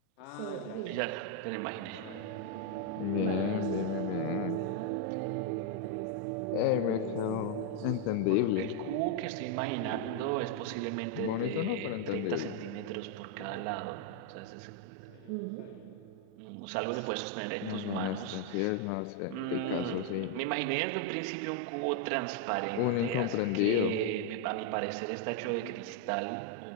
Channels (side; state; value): both; different; correlation 0.00